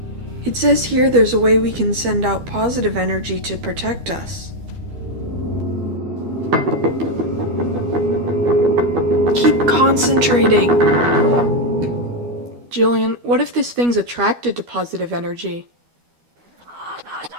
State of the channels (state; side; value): late; left; 12 ms